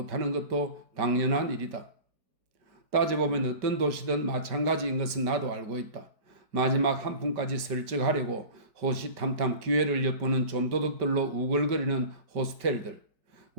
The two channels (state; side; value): late; left; 5.1 ms